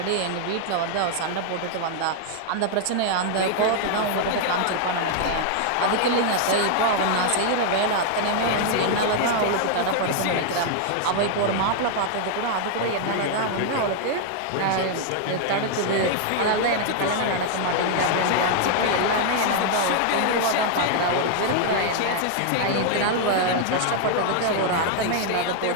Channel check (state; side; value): different; both; correlation 0.00